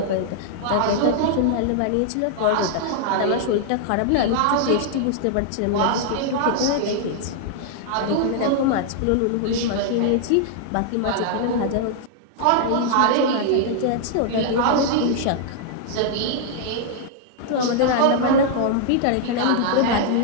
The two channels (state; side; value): different; both; correlation -0.01